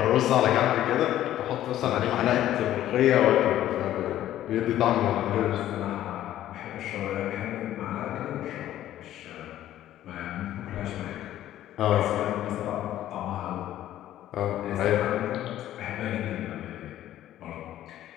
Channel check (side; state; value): right; quieter; 12.8 dB